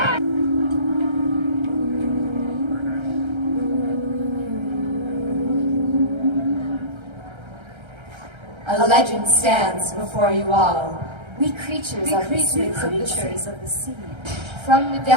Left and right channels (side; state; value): left; late; 1.3 ms